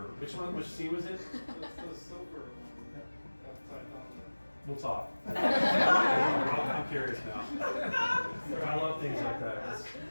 Which one? Which scene was it? It's the silver one. Upside down. We'll talk. I'm curious now. I love things like that.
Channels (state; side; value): inverted; both; correlation -1.00